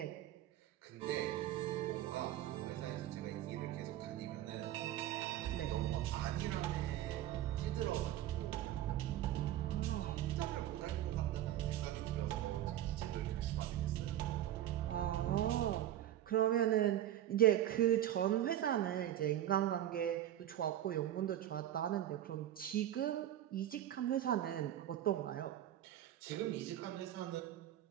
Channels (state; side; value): quieter; left; 12.3 dB